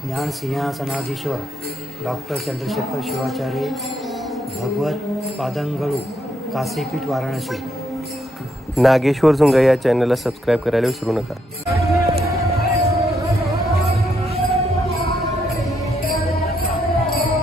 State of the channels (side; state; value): both; normal; correlation 0.76